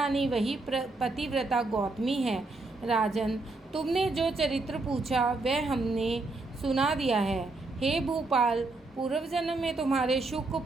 वही पतिव्रता गौतमी है। राजन, तुमने जो चरित्र पूछा वह हमने सुना दिया है। हे भूपाल, पूर्व जन्म में तुम्हारे शुक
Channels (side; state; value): left; quieter; 3.3 dB